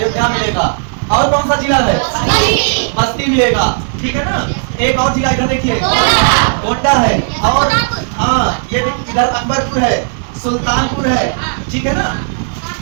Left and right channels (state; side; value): silent; left; 71 dB below the other